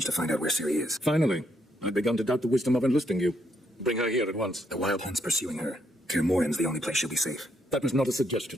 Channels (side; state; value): both; normal; correlation 0.75